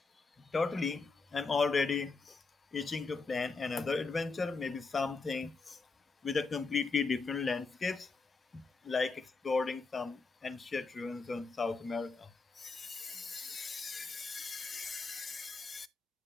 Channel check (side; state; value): right; quieter; 4.1 dB